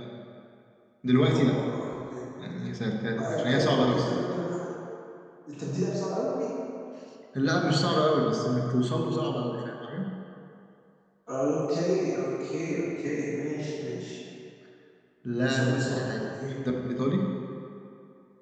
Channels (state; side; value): identical; both; correlation 1.00